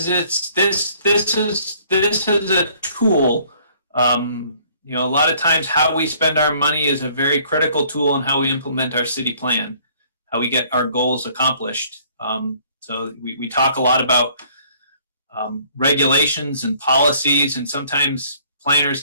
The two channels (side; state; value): both; inverted; correlation -0.60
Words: this is a tool. You know, a lot of times how we spend our money is a very critical tool in how we implement our city plan, how we get our goals accomplished. So we talk a lot about regulations and policies, and sometimes planners